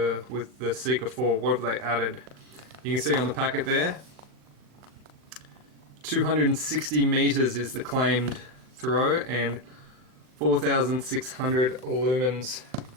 with the Seeker 4. What have they added? You can see on the packet there, 260 meters is the claimed throw and 4,600 lumens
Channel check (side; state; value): left; late; 39 ms